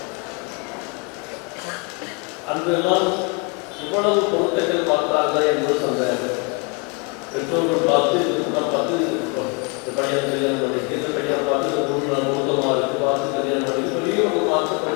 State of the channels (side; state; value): right; quieter; 32.9 dB